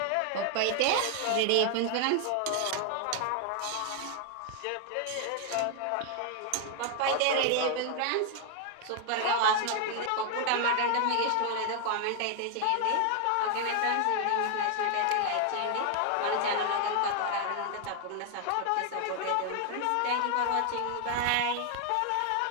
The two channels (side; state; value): both; different; correlation 0.00